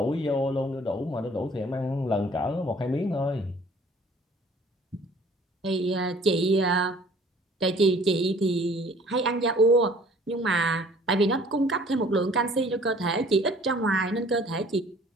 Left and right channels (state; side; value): normal; both; correlation 0.53